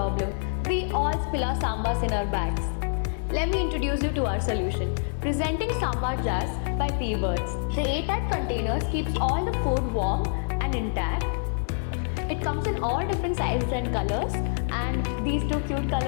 We all spill our sambas in our bags. Let me introduce you to our solution. Presenting sambar jars by P-Words. The airtight containers keeps all the food warm and intact. It comes in all different sizes and colors, and these two cute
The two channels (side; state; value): right; silent; 60 dB below the other